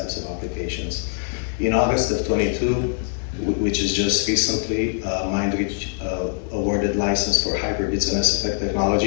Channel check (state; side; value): silent; right; digital silence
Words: of applications. In August of 22, which is just recently, Mindreach awarded license for HYPERBITS and SFX